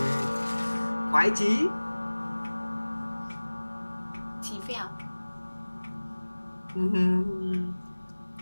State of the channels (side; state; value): both; inverted; correlation -1.00